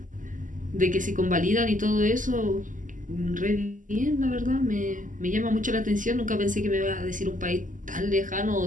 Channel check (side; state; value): left; late; 0.38 ms